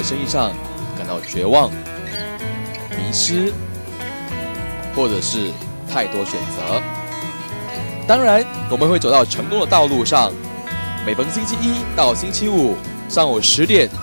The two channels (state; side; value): inverted; both; correlation -1.00